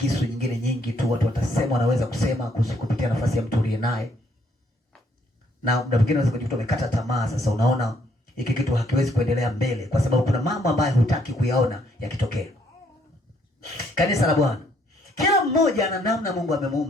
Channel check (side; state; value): both; normal; correlation 0.68